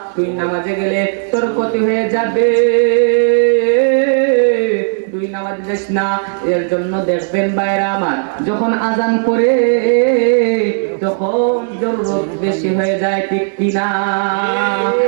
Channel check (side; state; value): left; silent; digital silence